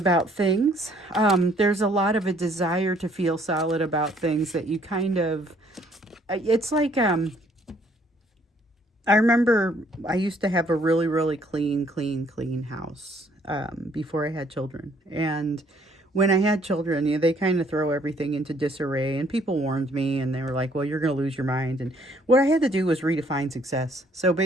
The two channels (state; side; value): normal; both; correlation 0.63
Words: things. There's a lot of a desire to feel solid about things that you kind of, it's like, I remember I used to have a really, really clean house before I had children. And when I had children, you know, they kind of throw everything into disarray, and people warned me, and they were like, well, you're going to lose your mind. And what I had to do was redefine success. So